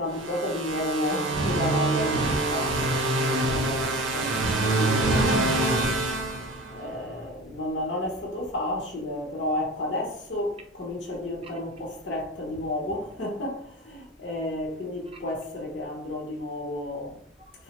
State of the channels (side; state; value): both; normal; correlation 0.33